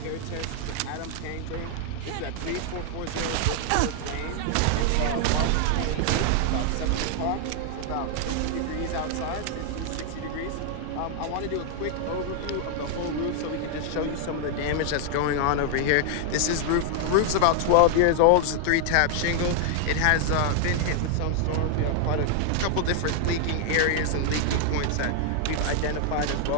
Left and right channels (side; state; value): both; different; correlation 0.00